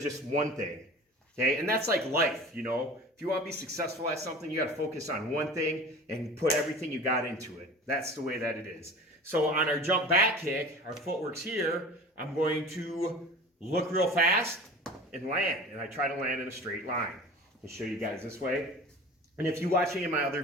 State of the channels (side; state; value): both; normal; correlation 0.38